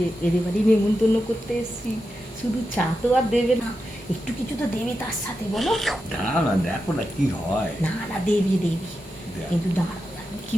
এদের বাড়ি নেমন্তন্ন করতে এসেছি। শুধু চা তো আর দেবে না, একটু কিছু তো দেবে তার সাথে, বলো। না দেখো না কি হয়। না না দেবে দেবে, কিন্তু দাঁড়াও কি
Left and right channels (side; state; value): both; normal; correlation 0.88